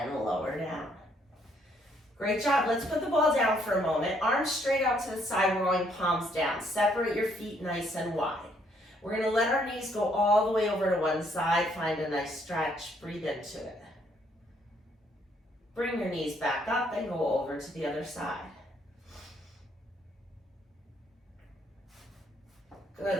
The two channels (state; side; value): normal; both; correlation 0.69